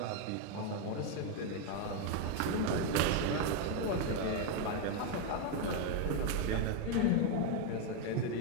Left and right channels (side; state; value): both; different; correlation 0.01